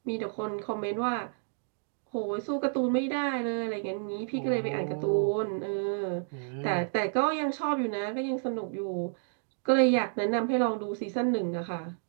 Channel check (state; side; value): silent; left; digital silence